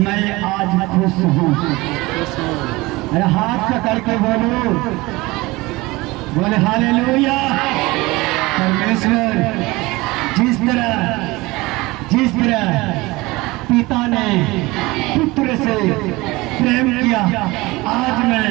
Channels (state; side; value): quieter; left; 21.5 dB